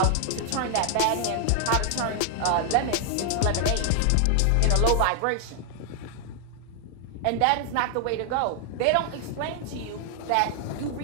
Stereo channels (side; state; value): both; different; correlation 0.00